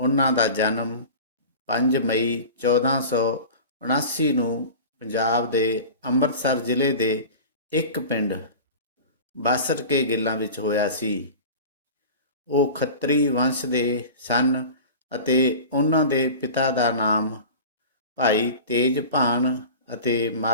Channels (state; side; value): inverted; both; correlation -0.35